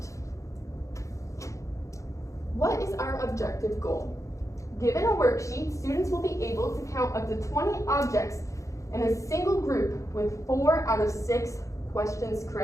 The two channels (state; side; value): late; right; 0.15 ms